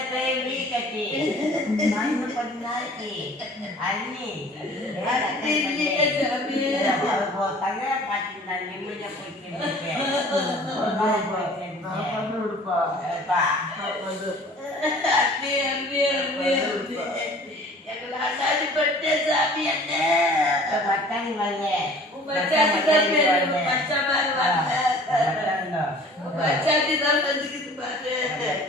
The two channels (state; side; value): normal; both; correlation 0.48